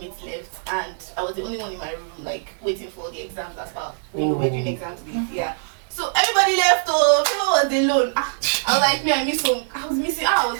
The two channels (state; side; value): silent; left; digital silence